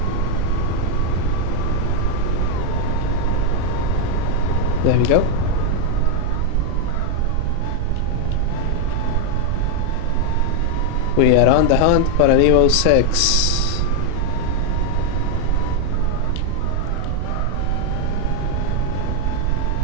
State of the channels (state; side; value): different; both; correlation 0.00